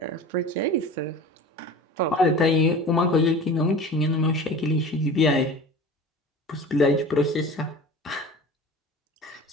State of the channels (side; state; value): both; normal; correlation 0.37